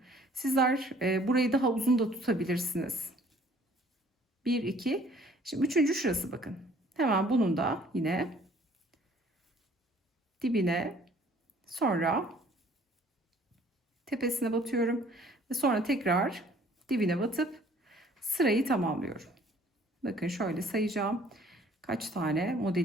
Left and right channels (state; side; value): normal; both; correlation 0.56